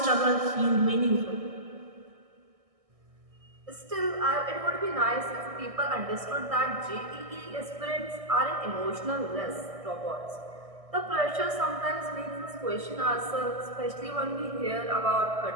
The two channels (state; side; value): late; left; 1.6 ms